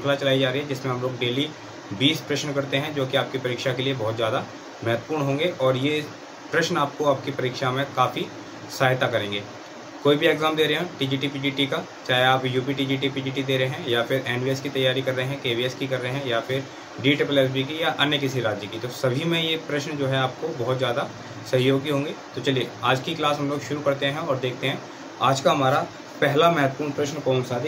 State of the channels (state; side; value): identical; both; correlation 1.00